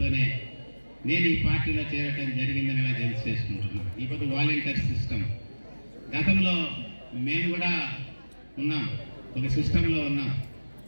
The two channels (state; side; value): inverted; both; correlation -1.00